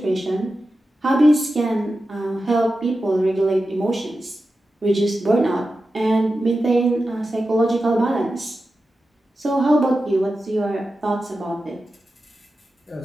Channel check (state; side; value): normal; both; correlation 0.92